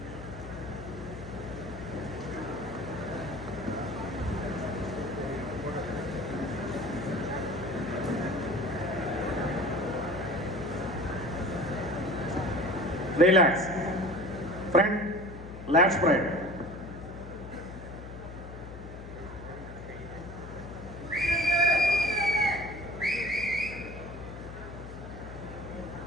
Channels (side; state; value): left; noise; hum, 12 dB below the sound